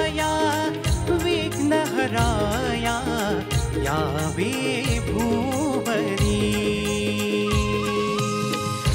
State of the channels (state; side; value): identical; both; correlation 1.00